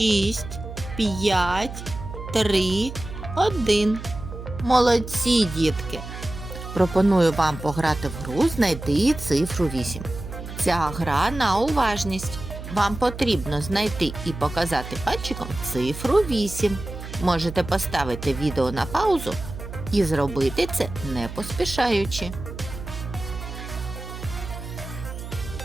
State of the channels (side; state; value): right; noise; hum, 10 dB below the sound